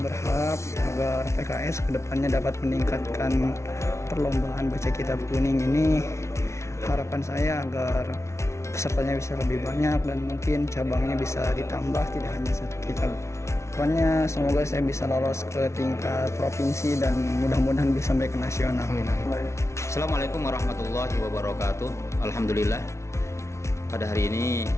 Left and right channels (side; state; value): right; late; 0.13 ms